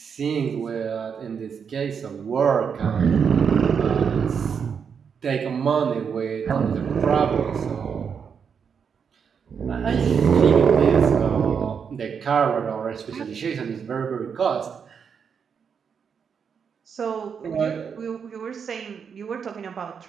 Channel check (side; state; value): left; quieter; 6.7 dB